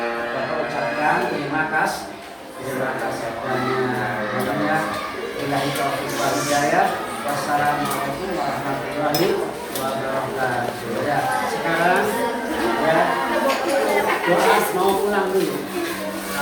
Bapak ucapkan terima kasih banyak. Billahi taufiq wal hidayah. Wassalamualaikum warahmatullahi wabarakatuh. Ya, sekarang ya doa mau pulang dulu.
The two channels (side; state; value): both; identical; correlation 1.00